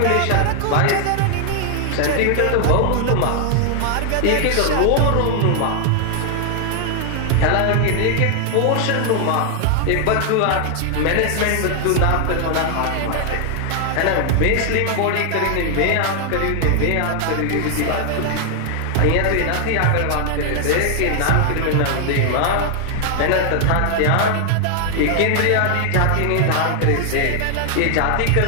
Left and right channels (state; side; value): different; both; correlation 0.00